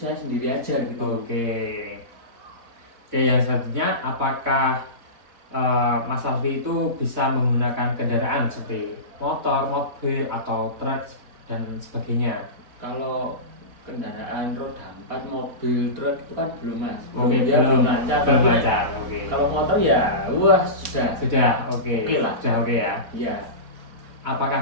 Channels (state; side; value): late; left; 4.0 ms